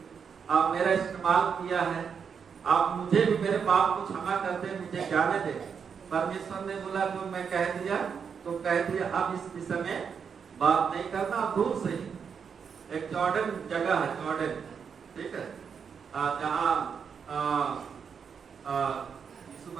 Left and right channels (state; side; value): quieter; left; 6.6 dB